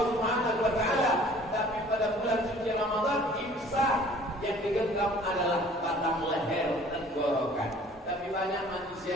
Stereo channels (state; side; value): normal; both; correlation 0.51